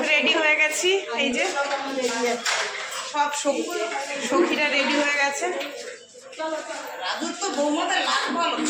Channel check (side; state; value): both; identical; correlation 1.00